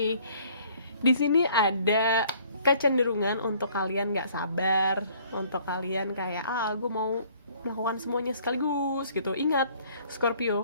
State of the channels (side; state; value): both; inverted; correlation -0.58